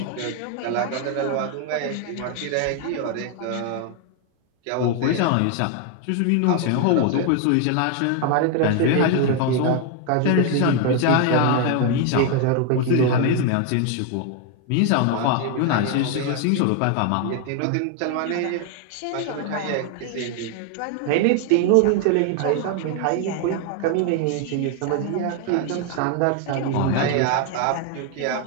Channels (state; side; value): different; both; correlation 0.01